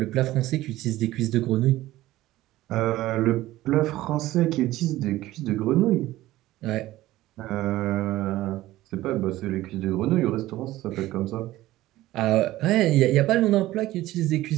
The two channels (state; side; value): quieter; left; 16.2 dB